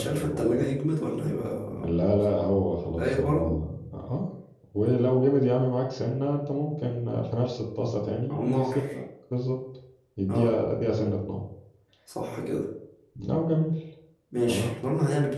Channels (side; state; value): both; identical; correlation 1.00